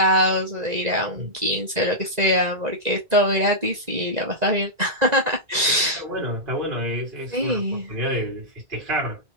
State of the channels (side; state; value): left; late; 1.9 ms